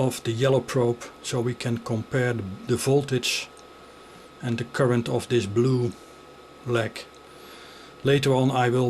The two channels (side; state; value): both; identical; correlation 1.00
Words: the yellow probe, so we can compare the voltage and the current of this blue leg. Later on I